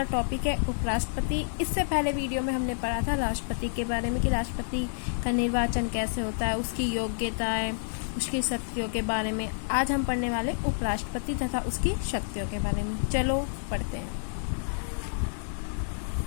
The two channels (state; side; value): silent; right; digital silence